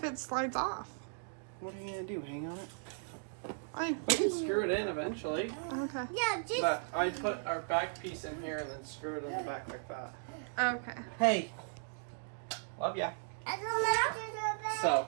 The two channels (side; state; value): left; silent; digital silence